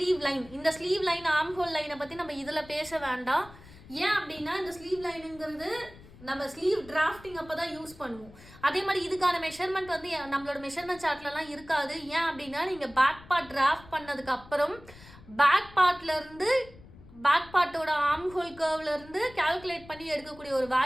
line. இந்த ஸ்லீவ் லைன், ஆர்ம் ஹோல் லைனை பற்றி நம்ம இதில் பேச வேண்டாம். ஏன் அப்படின்னா, இந்த ஸ்லீவ் லைனுங்கிறது நம்ம ஸ்லீவ் டிராஃப்டிங் அப்போ தான் யூஸ் பண்ணுவோம். அதே மாதிரி இதுக்கான மெஷர்மெண்ட் வந்து நம்மளோட மெஷர்மெண்ட் சார்ட்லலாம் இருக்காது. ஏன் அப்படின்னா, நீங்கள் பேக் பார்ட் டிராஃப்ட் பண்ணதுக்கு அப்புறம் பேக் பார்ட்டோட ஆர்ம் ஹோல் கர்வ்லேருந்து கால்குலேட் பண்ணி எடுக்கக்கூடிய ஒரு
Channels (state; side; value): noise; left; rumble, 21 dB below the sound